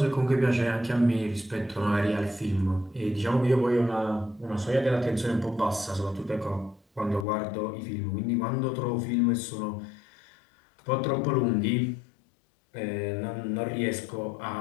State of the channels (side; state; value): right; drops out; at 7.2 s